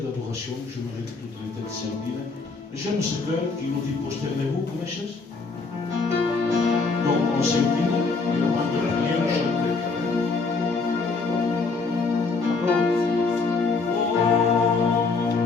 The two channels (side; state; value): right; quieter; 4.2 dB